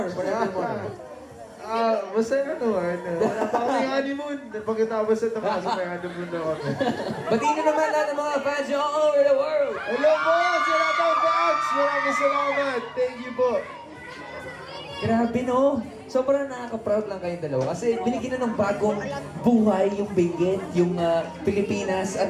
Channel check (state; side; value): identical; both; correlation 1.00